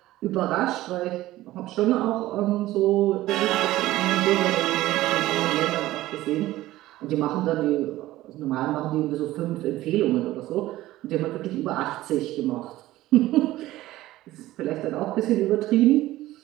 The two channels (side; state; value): left; quieter; 16.1 dB